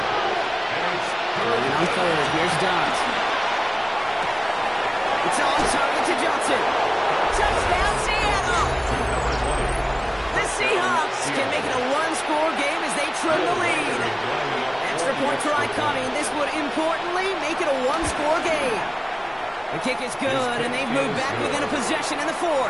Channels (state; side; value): identical; both; correlation 1.00